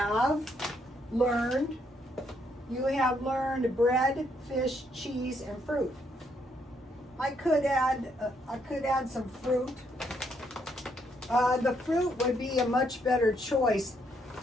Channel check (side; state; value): both; normal; correlation 0.73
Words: learned bread, fish, cheese, and fruit. I could add some fruit. The fruit would be a much better choice.